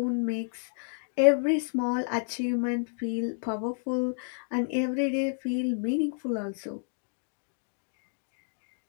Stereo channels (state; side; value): silent; right; digital silence